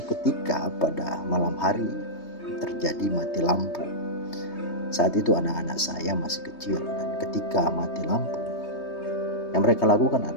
pada malam hari terjadi mati lampu. Saat itu anak-anak saya masih kecil, dan ketika mati lampu, yang mereka lakukan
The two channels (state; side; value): late; right; 3.2 ms